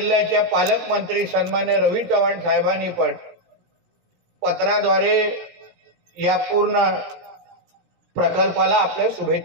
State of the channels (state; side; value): late; left; 17 ms